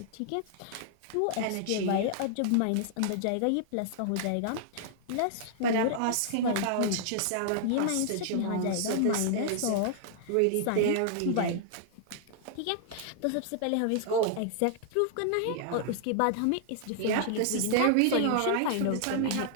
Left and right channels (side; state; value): both; different; correlation -0.01